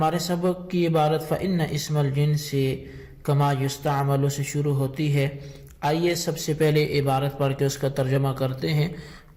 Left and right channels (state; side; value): identical; both; correlation 1.00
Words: سبق کی عبارت فإن اسم الجنس کما یستعمل سے شروع ہوتی ہے۔ آئیے سب سے پہلے عبارت پڑھ کے اس کا ترجمہ کرتے ہیں،